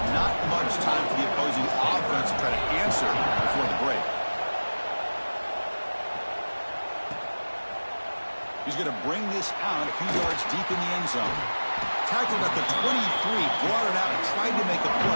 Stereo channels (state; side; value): inverted; both; correlation -1.00